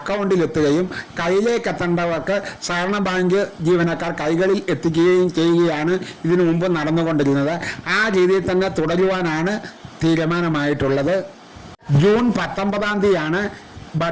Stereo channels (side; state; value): both; identical; correlation 1.00